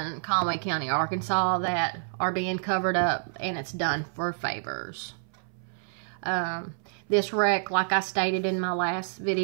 Conway County, Arkansas that are being covered up, and it's done for favors. This wreck, like I stated in my last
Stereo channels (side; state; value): left; silent; 59 dB below the other